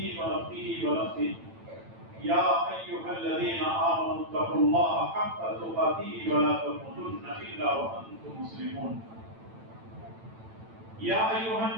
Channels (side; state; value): left; late; 9.0 ms